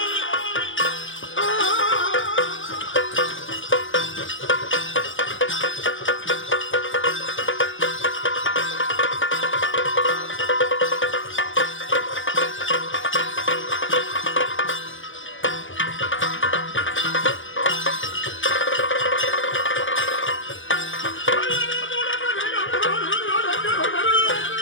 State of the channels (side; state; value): right; late; 0.57 ms